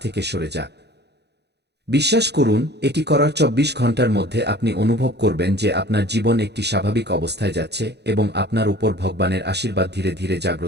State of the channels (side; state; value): left; late; 0.49 ms